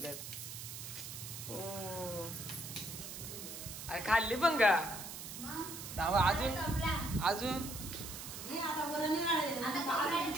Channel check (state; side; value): noise; right; hiss, 9 dB below the sound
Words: अरे खाल्ली पण का. अजून